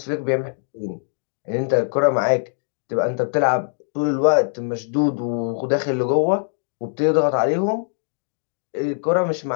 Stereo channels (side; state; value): right; silent; digital silence